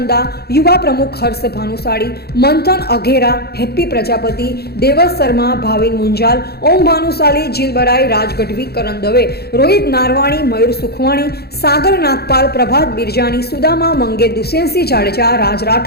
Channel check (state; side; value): late; right; 0.46 ms